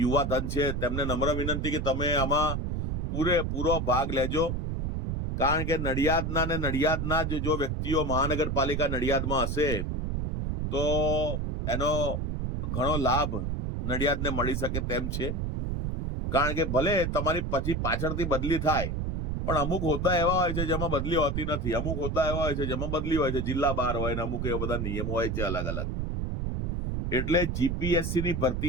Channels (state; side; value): noise; right; rumble, 1 dB below the sound